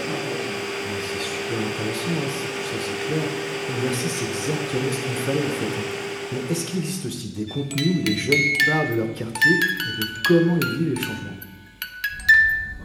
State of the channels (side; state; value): both; identical; correlation 1.00